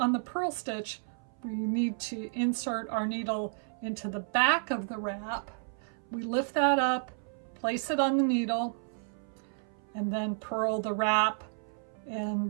the purl stitch, we need to insert our needle into the back of the wrap. We lift that up, place it on the needle, and then purl the wrap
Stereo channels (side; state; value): left; silent; 57 dB below the other